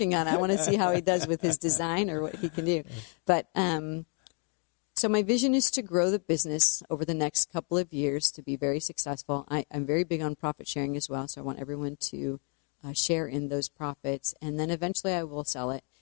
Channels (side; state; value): right; quieter; 39.0 dB